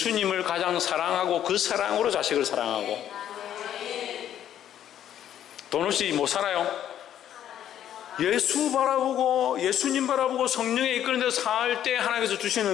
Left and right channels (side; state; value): right; quieter; 10.7 dB